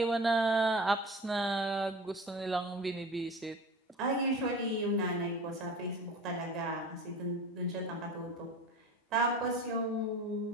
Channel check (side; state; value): both; normal; correlation 0.36